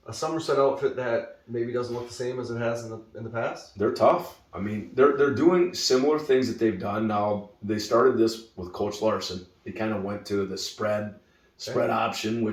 a Somerset outfit that maybe doesn't look the same as it has in the past. They're tough. I mean, they're doing similar things that they've done. Now they started this with Coach Larson. They kind of went to the spread option,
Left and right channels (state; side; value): identical; both; correlation 1.00